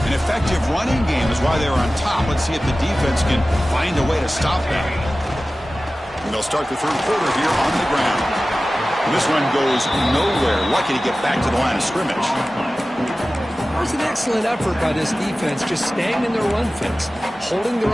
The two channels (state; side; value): normal; both; correlation 0.96